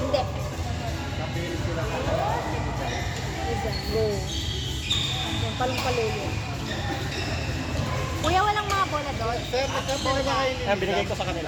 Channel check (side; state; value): both; identical; correlation 1.00